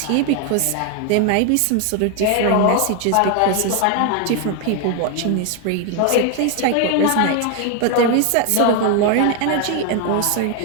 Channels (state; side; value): different; both; correlation 0.01